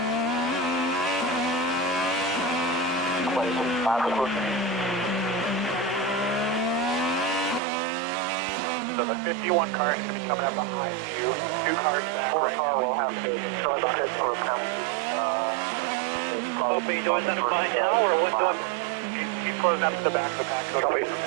So the 51 car is going to be coming up behind you. 2 cars back. 4 car will have to start the head for a penalty. Hope are you doing that behind now, or what? Keep closing up to the back of the pack. Go away from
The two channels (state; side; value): drops out; left; at 7.6 s